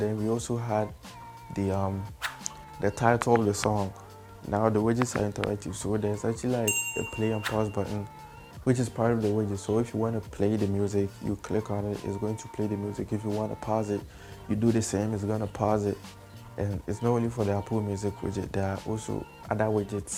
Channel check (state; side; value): identical; both; correlation 1.00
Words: we also had the title of the song. Now the widgets are interactive, so there's actually like a play and pause button, which is part of the widget. So if you want to play the music, you click on it, it's going to play the music. If you want to pause it, you do the same, it's going to pause it. And it's not only for the Apple Music widget, there are also other